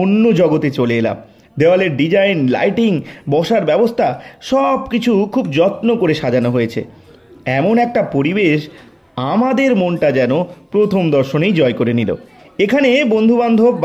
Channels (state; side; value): identical; both; correlation 1.00